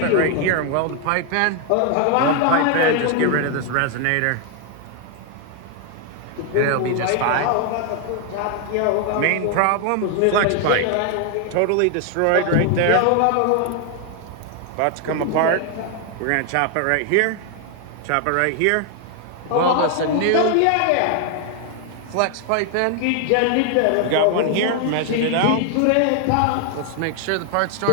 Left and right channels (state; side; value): different; both; correlation 0.00